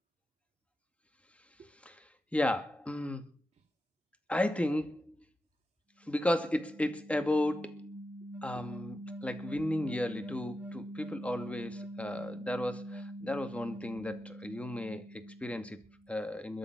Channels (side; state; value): both; normal; correlation 0.89